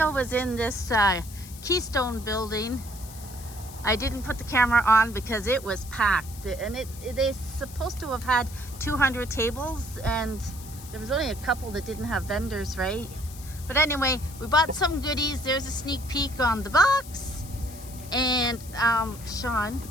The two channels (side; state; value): left; noise; hiss, 17 dB below the sound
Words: was in this Keystone building. I didn't put the camera on because it was packed, and they're supposed to have had 200 tables, and there was only a couple that didn't have vendors, right? But anyway, we bought some goodies. There's a sneak peek on the box. And Sean,